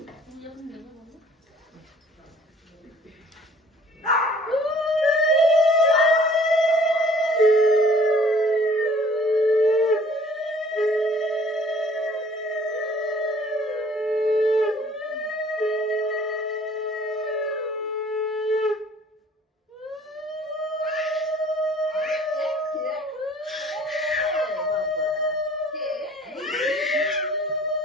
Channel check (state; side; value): normal; both; correlation 0.54